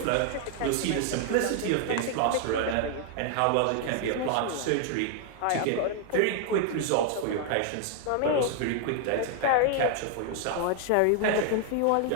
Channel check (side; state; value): both; different; correlation 0.00